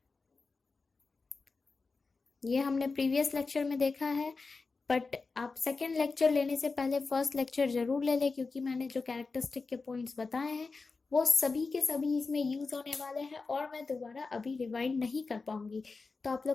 ये हमने प्रीवियस लेक्चर में देखा है, बट आप सेकेंड लेक्चर लेने से पहले फर्स्ट लेक्चर जरूर ले लें, क्योंकि मैंने जो कैरेक्टरिस्टिक के पॉइंट्स बताए हैं वो सभी के सभी इसमें यूज होने वाले हैं, और मैं दोबारा अभी रिवाइंड नहीं कर पाऊंगी। तो आप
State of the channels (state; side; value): quieter; right; 4.2 dB